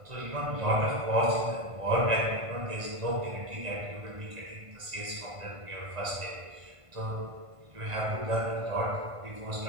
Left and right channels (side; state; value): left; late; 1.5 ms